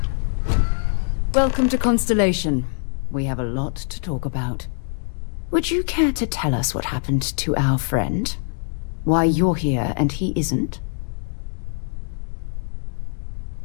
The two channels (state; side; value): silent; right; 56 dB below the other